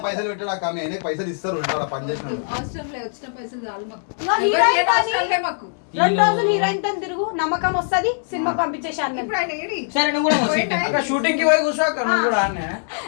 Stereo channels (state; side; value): silent; right; 64 dB below the other